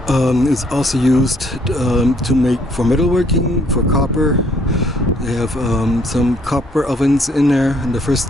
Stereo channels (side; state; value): both; normal; correlation 0.66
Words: It's also used to make for metalworking, for copper. They have some copper ovens in there in the